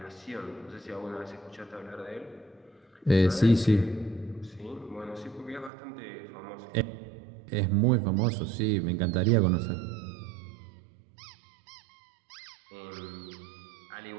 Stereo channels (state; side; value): drops out; left; at 5.7 s